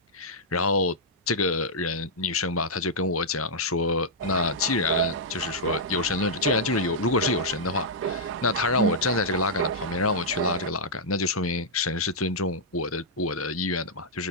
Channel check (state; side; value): normal; both; correlation -0.08